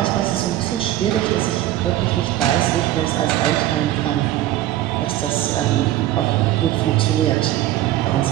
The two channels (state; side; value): quieter; left; 13.9 dB